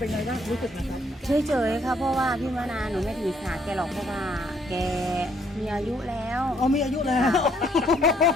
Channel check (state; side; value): normal; both; correlation 0.67